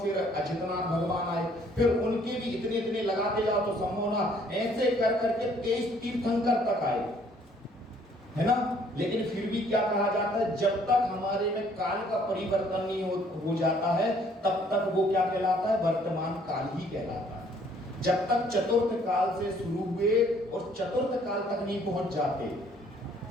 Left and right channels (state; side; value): normal; both; correlation 0.62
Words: अजितनाथ भगवान आए, फिर उनके भी इतने इतने लगाते जाओ तो संभव ना, ऐसे कर करके 23 तीर्थंकर तक आए, है ना? लेकिन फिर भी क्या कहा जाता है? जब तक हमारे में काल का परिवर्तन नहीं हो जाता है, तब तक वो क्या कहलाता है? वर्तमान काल ही कहलाता है। जब तक चतुर्थ काल से शुरू हुए और चतुर्थ काल तक नहीं पहुंच जाते,